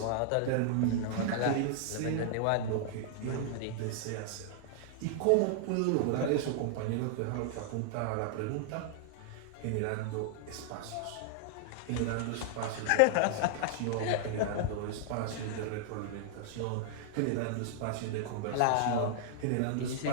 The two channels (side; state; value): both; different; correlation -0.01